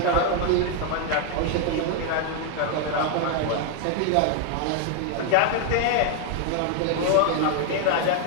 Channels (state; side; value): different; both; correlation 0.00